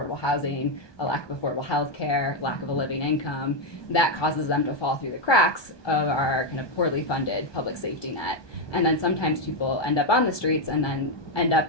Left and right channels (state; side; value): late; right; 1.2 ms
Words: housing, a lack of affordable health care, lack of a living income, that causes them to fall through the cracks of our kind of poorly funded public safety net. And then sometimes people end up on the streets and then end